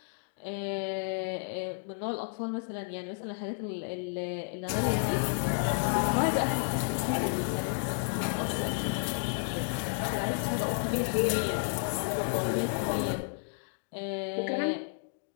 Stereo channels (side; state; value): right; silent; digital silence